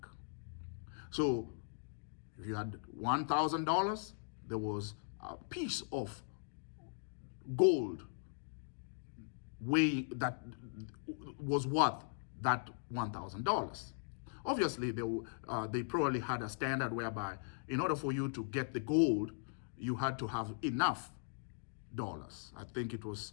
So if you had $1,000, there was a piece of gold that was worth that $1,000. Obviously, they probably had a standard whereby in order for you to get the gold, you had to have enough dollars. I think it was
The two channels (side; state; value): right; silent; digital silence